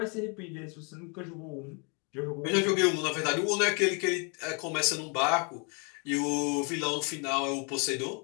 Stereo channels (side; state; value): right; quieter; 34.7 dB